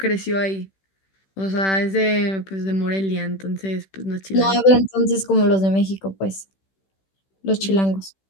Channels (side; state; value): right; late; 16 ms